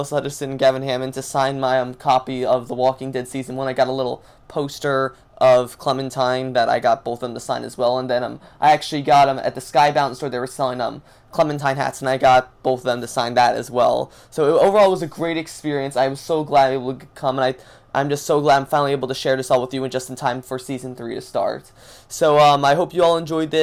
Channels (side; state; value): both; identical; correlation 1.00